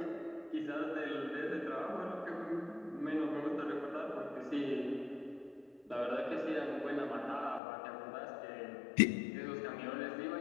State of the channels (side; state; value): right; drops out; at 7.6 s